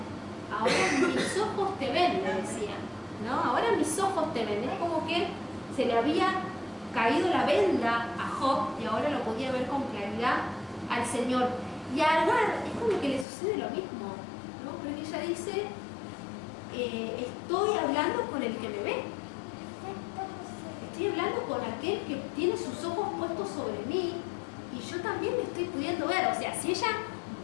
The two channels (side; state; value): right; drops out; at 13.2 s